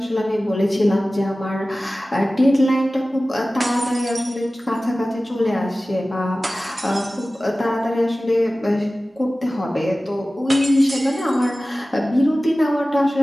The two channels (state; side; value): normal; both; correlation 0.96